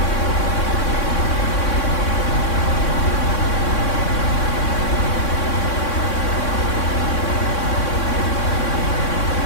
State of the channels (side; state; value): right; late; 3.6 ms